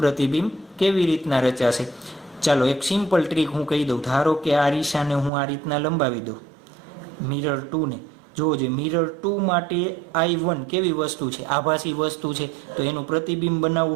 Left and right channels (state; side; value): drops out; left; at 5.3 s